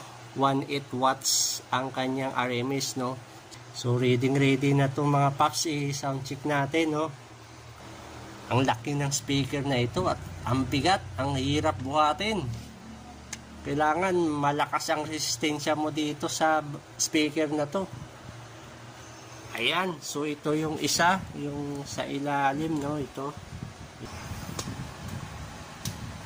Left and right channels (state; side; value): identical; both; correlation 1.00